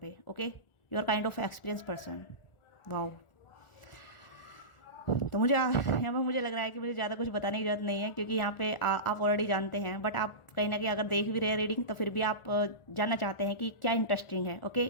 Okay, you are kind of experience person. Wow, तो यहाँ पर मुझे लग रहा है कि मुझे ज़्यादा कुछ बताने की जरूरत नहीं है, क्योंकि यहाँ पे आप ऑलरेडी जानते हैं। बट आप कहीं ना कहीं अगर देख भी रहे हैं रीडिंग, तो फिर भी आप जानना चाहते हैं कि क्या इंटरेस्टिंग है। ओके,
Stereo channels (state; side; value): late; right; 1.4 ms